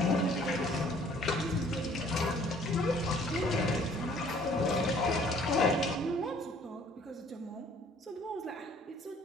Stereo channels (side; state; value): both; normal; correlation 0.57